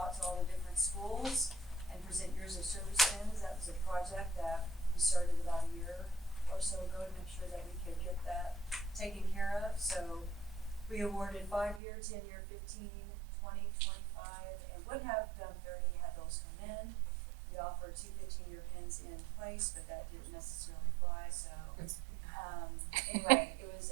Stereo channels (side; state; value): left; drops out; at 11.8 s